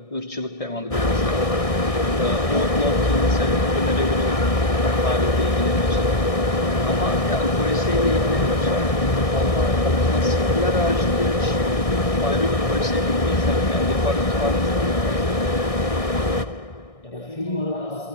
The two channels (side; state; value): right; late; 1.6 ms